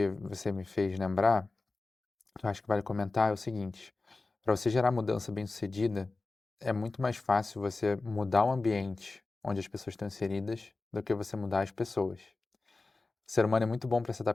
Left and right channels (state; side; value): quieter; right; 3.5 dB